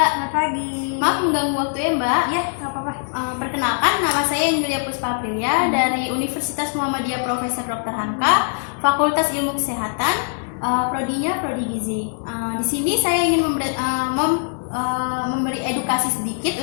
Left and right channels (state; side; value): silent; right; digital silence